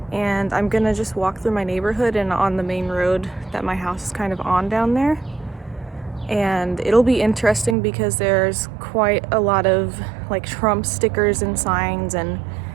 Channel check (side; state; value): left; drops out; at 7.8 s